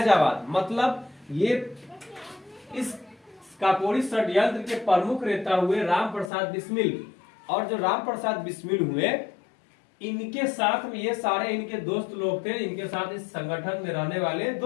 मतलब ये इस काकोरी षड्यंत्र के प्रमुख नेता हुए राम प्रसाद बिस्मिल। और जो राम प्रसाद बिस्मिल हुए इनके साथ में ये सारे इनके दोस्त लोग थे, इनके साथ इस संगठन में रहने वाले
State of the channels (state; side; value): drops out; right; at 6.3 s